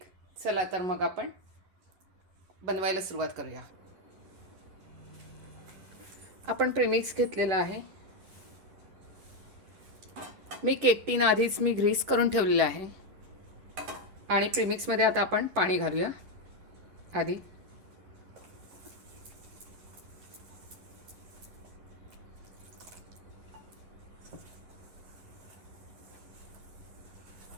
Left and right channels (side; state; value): left; late; 10 ms